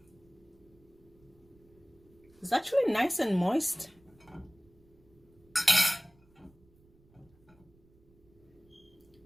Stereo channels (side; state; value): right; noise; rumble, 29 dB below the sound